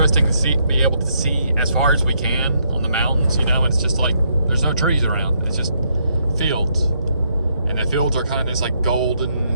to be able to see as far as we can on the mountains. You know, it's just like there's no trees around. It's just fields, and the fields are kind of this like golden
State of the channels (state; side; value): inverted; both; correlation -0.74